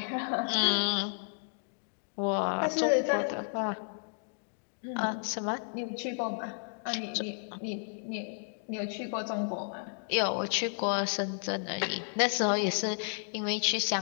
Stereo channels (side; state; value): right; silent; digital silence